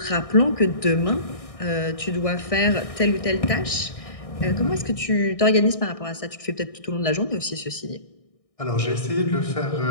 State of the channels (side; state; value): right; late; 1.6 ms